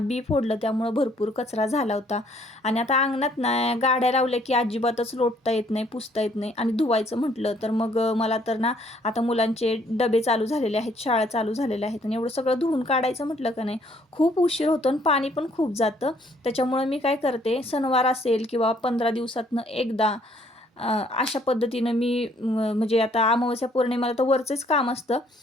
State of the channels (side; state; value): both; normal; correlation 0.64